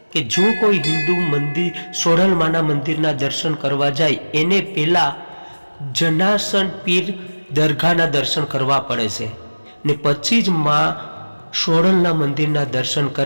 કે જો કોઈ હિન્દુ મંદિર સોડલમાના મંદિરના દર્શન કરવા જાય એને પહેલાં જનાસન પીર દરગાહના દર્શન કરવા પડે છે ને પછી જ માં સોડલના મંદિરના દર્શન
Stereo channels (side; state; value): both; inverted; correlation -1.00